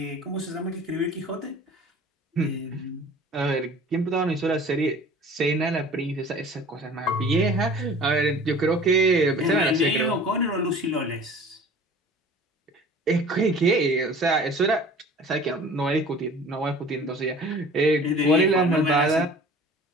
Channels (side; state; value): both; normal; correlation 0.45